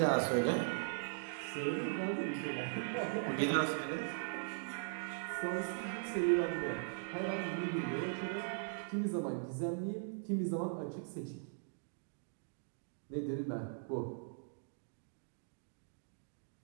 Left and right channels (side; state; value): left; silent; digital silence